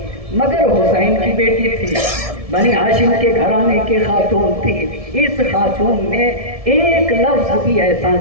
مگر حسین کی بیٹی تھی. بنی ہاشم کے گھرانے کی خاتون تھی. اس خاتون نے ایک لفظ بھی ایسا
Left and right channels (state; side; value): late; left; 1.7 ms